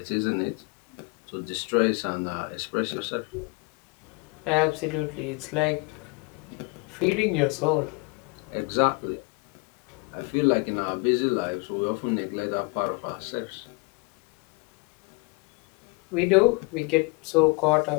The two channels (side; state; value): right; quieter; 28.7 dB